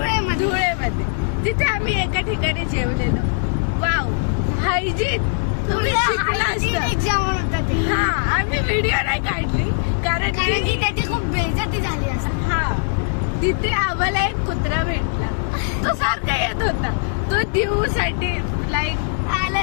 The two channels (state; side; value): silent; right; 58 dB below the other